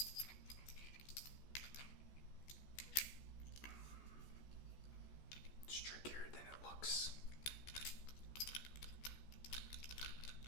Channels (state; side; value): late; right; 14 ms